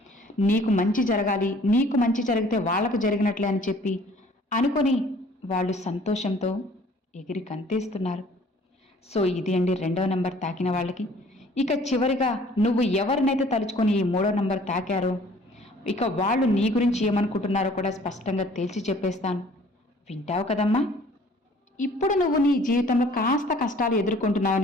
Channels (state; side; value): normal; both; correlation 0.54